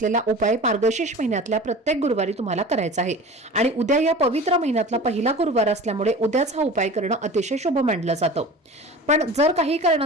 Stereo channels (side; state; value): both; normal; correlation 0.37